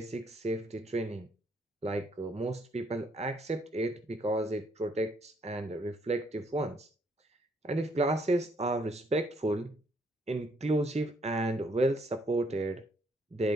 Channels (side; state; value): both; normal; correlation 0.69